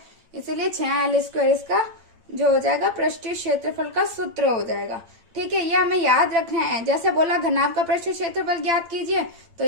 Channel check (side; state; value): left; late; 8.8 ms